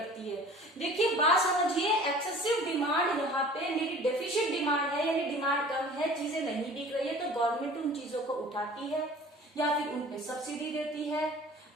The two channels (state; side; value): normal; both; correlation 0.45